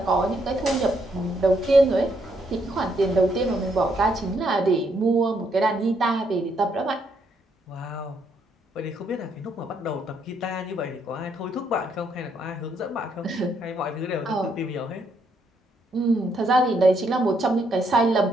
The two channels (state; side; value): normal; both; correlation 0.74